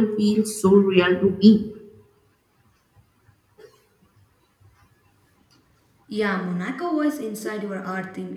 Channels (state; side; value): identical; both; correlation 1.00